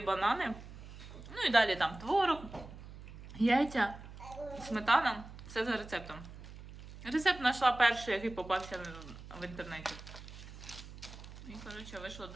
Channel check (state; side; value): noise; right; hum, 15 dB below the sound